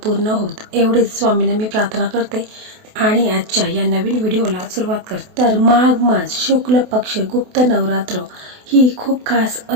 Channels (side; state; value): left; late; 28 ms